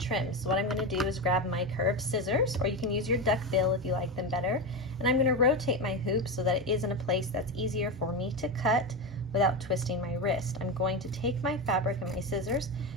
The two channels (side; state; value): both; normal; correlation 0.16